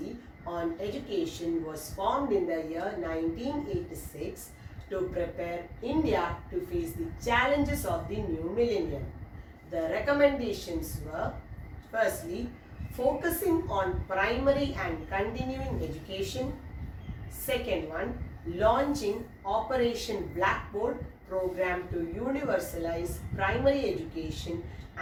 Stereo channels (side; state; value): both; identical; correlation 1.00